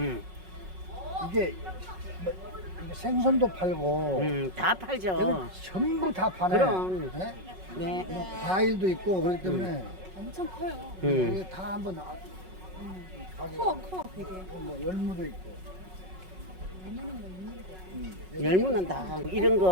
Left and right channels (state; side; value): late; left; 5.4 ms